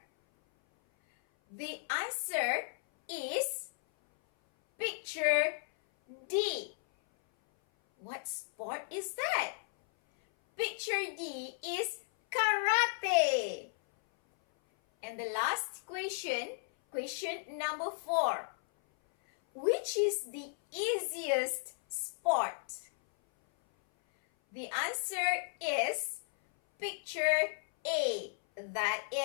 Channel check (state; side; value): silent; right; 55 dB below the other